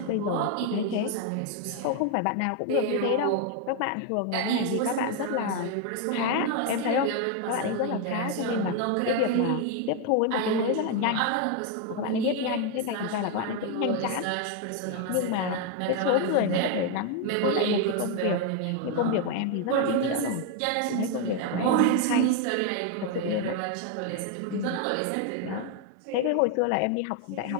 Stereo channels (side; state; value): both; different; correlation 0.01